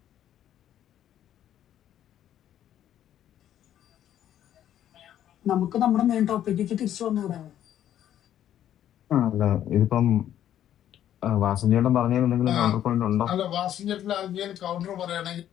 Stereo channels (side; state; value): right; quieter; 11.1 dB